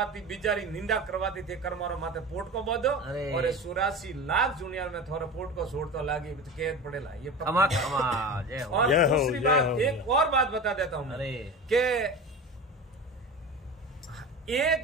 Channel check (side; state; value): both; normal; correlation 0.31